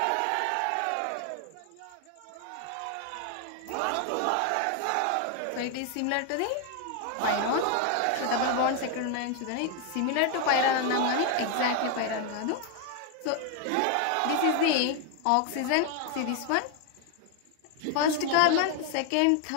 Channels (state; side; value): different; both; correlation 0.01